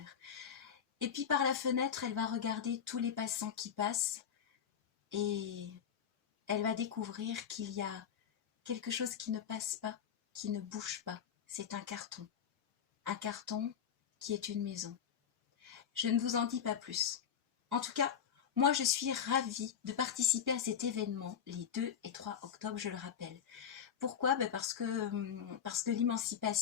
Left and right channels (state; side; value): quieter; right; 8.1 dB